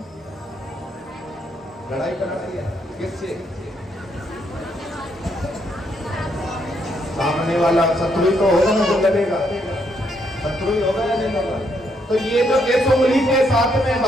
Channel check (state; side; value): normal; both; correlation 0.74